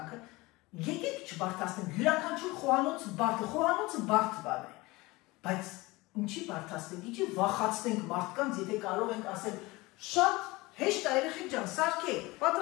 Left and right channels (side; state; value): right; quieter; 21.9 dB